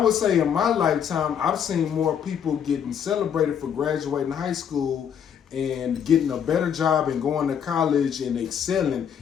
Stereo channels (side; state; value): right; quieter; 8.2 dB